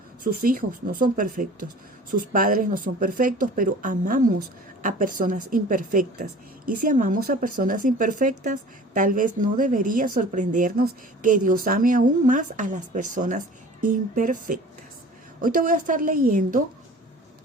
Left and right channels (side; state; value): both; normal; correlation 0.44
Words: sus hijos no son perfectos, sus padres no son perfectos, pero amamos a personas imperfectas. Y si amamos a personas imperfectas, tal vez no debería sorprendernos que Dios ame aún más a las personas imperfectas. Hoy te voy a estar leyendo